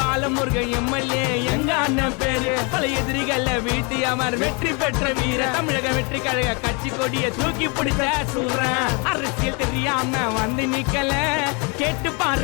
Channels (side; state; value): right; quieter; 32.3 dB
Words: எம்எல்ஏ எங்க அண்ணன் பேரு. பல எதிரிகள வீட்டி அவர் வெற்றி பெற்ற வீர. தமிழக வெற்றி கழக கட்சி கொடிய தூக்கி பிடிச்ச சூரன். அரசியல் தெரியாம வந்து நிக்கல, கேட்டு